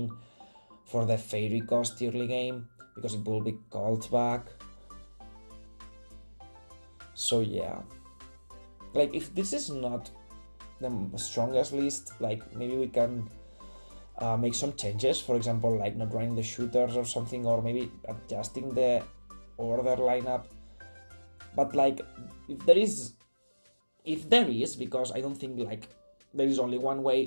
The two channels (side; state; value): both; inverted; correlation -1.00